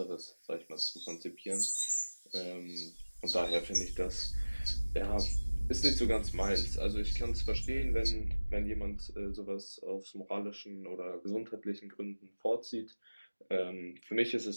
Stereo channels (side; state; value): both; inverted; correlation -1.00